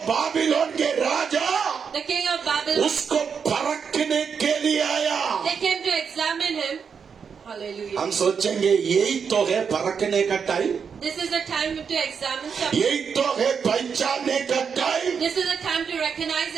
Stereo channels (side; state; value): left; quieter; 6.4 dB